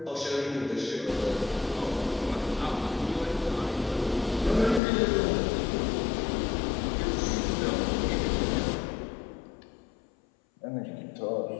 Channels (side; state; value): right; drops out; at 4.8 s